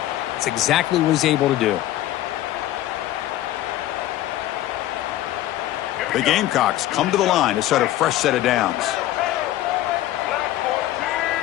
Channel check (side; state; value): right; quieter; 14.3 dB